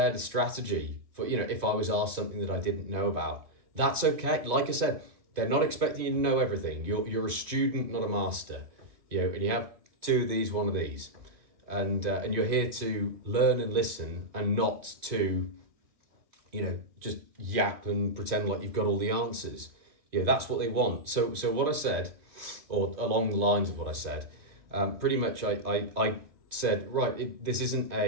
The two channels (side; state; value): left; late; 2.7 ms